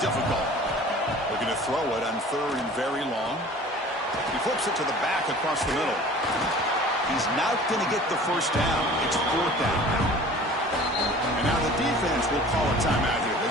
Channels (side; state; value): both; normal; correlation 0.45